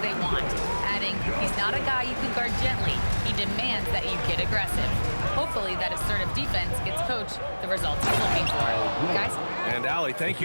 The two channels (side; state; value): both; inverted; correlation -1.00